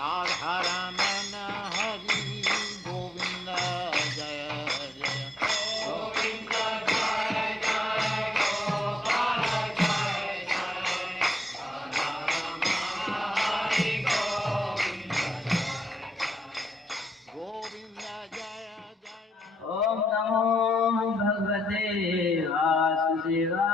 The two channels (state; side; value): normal; both; correlation 0.79